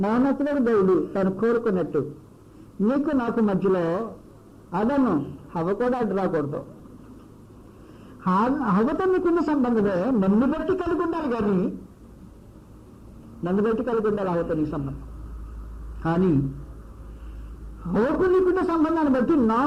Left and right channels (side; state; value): both; identical; correlation 1.00